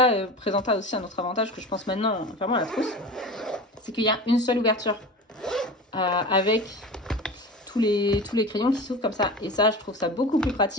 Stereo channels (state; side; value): normal; both; correlation 0.32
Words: présenta aussi un autre avantage que je pense maintenant, vraiment à la trousse. C'est qu'il y a une seule ouverture avec tous les crayons qui s'ouvrent comme ça. Et ça, je trouve ça beaucoup plus